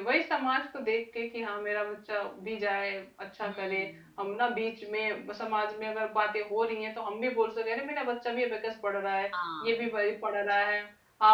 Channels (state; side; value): identical; both; correlation 1.00